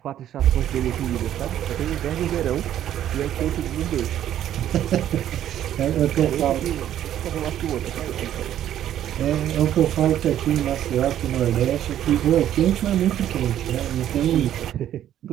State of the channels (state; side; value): quieter; left; 11.3 dB